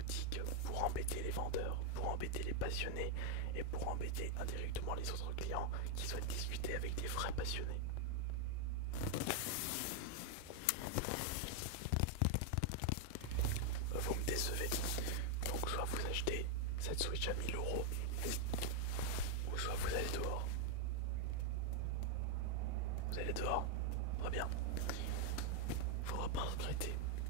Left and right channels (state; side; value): different; both; correlation 0.00